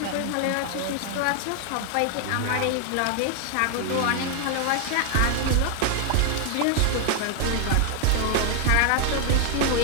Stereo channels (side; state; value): both; different; correlation 0.00